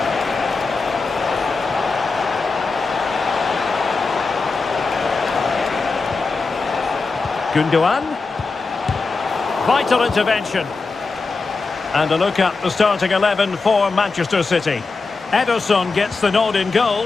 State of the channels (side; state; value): right; quieter; 4.1 dB